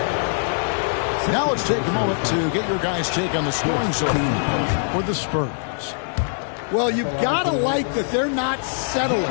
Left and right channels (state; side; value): silent; right; digital silence